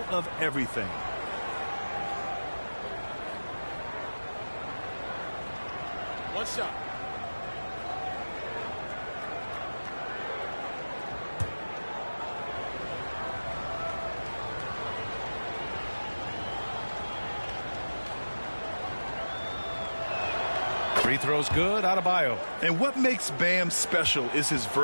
of everything. One shot. Free throw's good, Adebayo. And what makes Bam special is his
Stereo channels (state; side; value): inverted; both; correlation -1.00